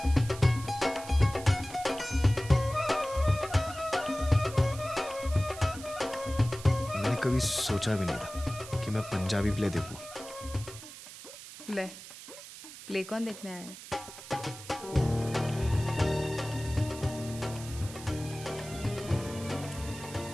कभी सोचा भी नहीं था कि मैं पंजाबी प्ले देखूं। ले, प्ले कौन देखने आया है?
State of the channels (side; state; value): right; noise; hiss, 14 dB below the sound